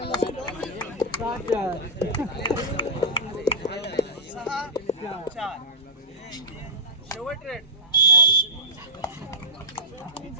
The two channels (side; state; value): both; normal; correlation -0.14